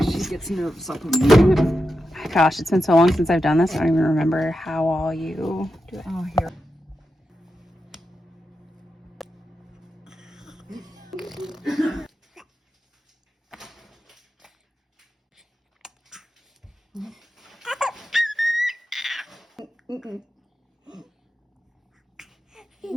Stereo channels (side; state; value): both; normal; correlation 0.88